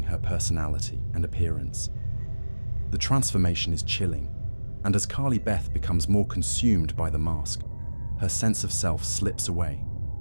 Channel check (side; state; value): both; inverted; correlation -1.00